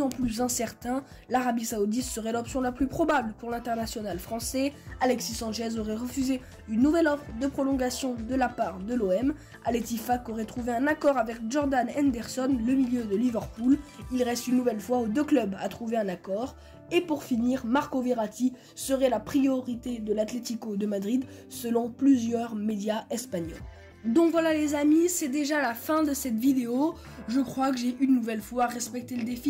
en plus incertain. L'Arabie Saoudite serait l'option la plus probable pour l'international français. Alexis Sanchez aurait refusé une nouvelle offre de prolongation de la part de l'OM. Al Ettifaq aurait trouvé un accord avec Jordan Henderson, le milieu de Liverpool. Il reste une nouvelle fois aux deux clubs à trouver un accord. Et pour finir, Marco Verratti serait la priorité de l'Atlético de Madrid selon plusieurs médias espagnols. Donc voilà les amis, c'est déjà la fin de cette vidéo. Je crois que j'ai une nouvelle fois respecté le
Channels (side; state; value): both; identical; correlation 1.00